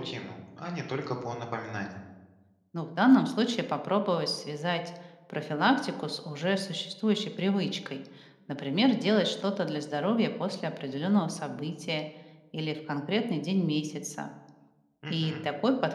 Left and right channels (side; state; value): both; identical; correlation 1.00